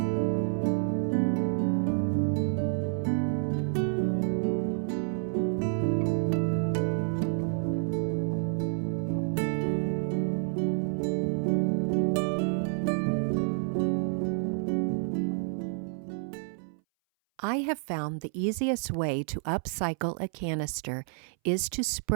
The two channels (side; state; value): left; silent; 58 dB below the other